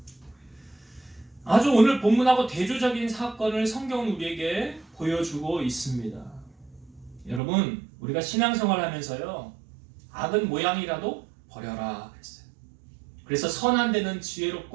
아주 오늘 본문하고 대조적인 사건을 성경은 우리에게 보여주고 있습니다. 여러분, 우리가 신앙생활 하면서요, 악은 모양이라도 버려라 그랬어요. 그래서 선한 데는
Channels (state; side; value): drops out; left; at 7.4 s